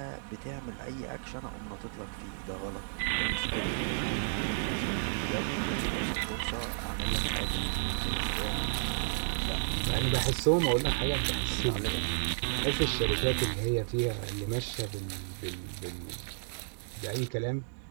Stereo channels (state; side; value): silent; left; digital silence